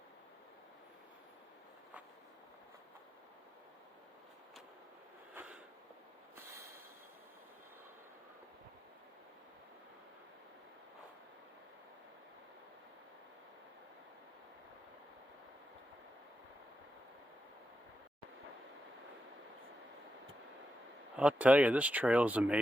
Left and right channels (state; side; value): normal; both; correlation 0.88